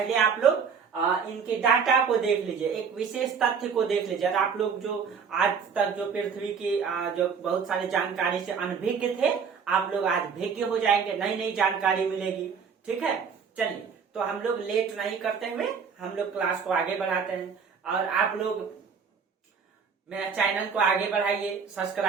आप लोग इनके डाटा को देख लीजिए, एक विशेष तथ्य को देख लीजिए। आप लोग जो आज तक जो पृथ्वी की जो बहुत सारी जानकारी से अनभिज्ञ थे, आप लोग आज भिज्ञ हो जाएंगे, नई नई जानकारी मिलेगी, ठीक है। चलिए, तो हम लोग लेट नहीं करते हुए हम लोग क्लास को आगे बढ़ाते हैं और आप लोग मेरा चैनल को आगे बढ़ाइए,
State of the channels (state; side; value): quieter; left; 6.2 dB